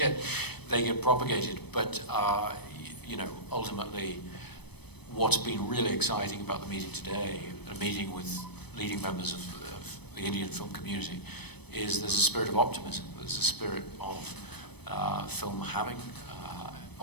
propagated. But ultimately, what's been really exciting about the meeting today, a meeting with leading members of the Indian film community, is there's a spirit of optimism. There's a spirit of film having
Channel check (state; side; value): late; right; 0.98 ms